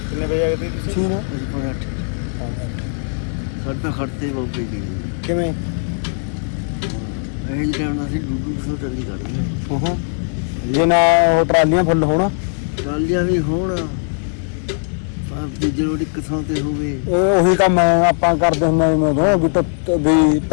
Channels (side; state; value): right; silent; 62 dB below the other